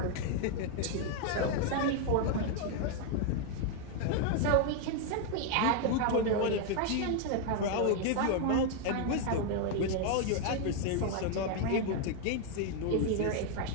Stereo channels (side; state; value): both; different; correlation 0.00